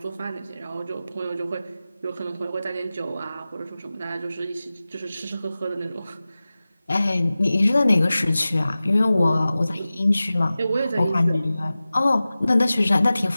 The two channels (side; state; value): both; inverted; correlation -0.96